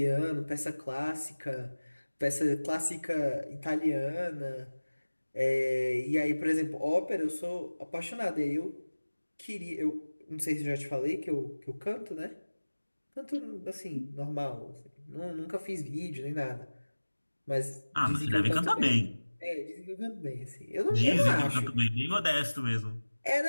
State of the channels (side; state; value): both; inverted; correlation -1.00